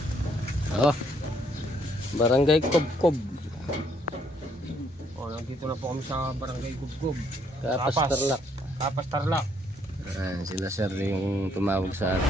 Oh, Barangay Kubkob. Oh, nandito na po kami sa Barangay Kubkob. Kapas Tarlac. Kapas Tarlac. Ayan, sila sir yung tumawag sa atin.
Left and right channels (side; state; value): both; normal; correlation 0.69